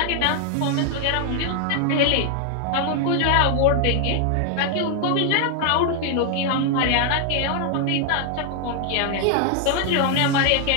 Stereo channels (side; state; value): both; different; correlation 0.00